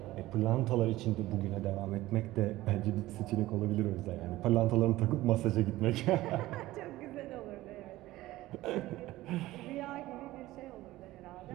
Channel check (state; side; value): quieter; left; 16.9 dB